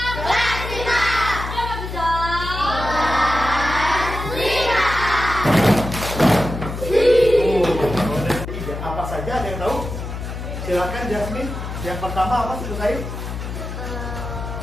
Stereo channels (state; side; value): noise; left; hum, 7 dB below the sound